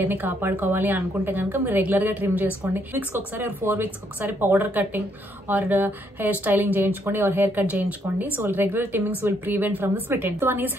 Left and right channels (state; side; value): normal; both; correlation 0.72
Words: కాపాడుకోవాలి అనుకుంటే కనుక మీరు రెగ్యులర్గా ట్రిమ్ చేసుకోండి. వీక్స్కి ఒకసారి 4 వీక్స్కి ఒకసారి powder cutting or hair styling చేయించుకోండి ఆర్ హెయిర్ కట్ చేయించుకోండి. So regular trimmings will prevent from the split end. One is